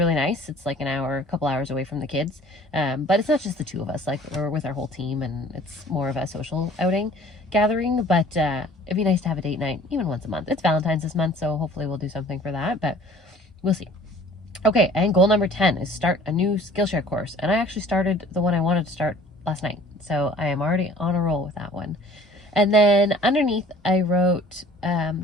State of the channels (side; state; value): both; normal; correlation 0.50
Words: nice. It's like a couple hours away from the kids. But it's not just the 2 of us, like we're with our whole team, and it's more of a social outing gathering. But it'd be nice to have a date night even once a month. It's Valentine's this month, so hopefully we'll do something for that, but we'll see. Okay, and goal number 10 is start a new Skillshare course. And I actually started the one I wanted to start last night, so I am already on a roll with that one. And then underneath I wrote,